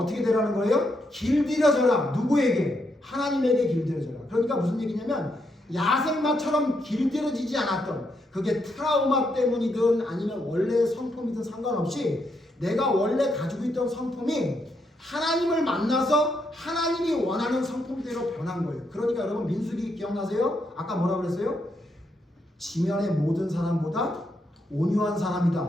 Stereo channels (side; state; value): both; normal; correlation 0.79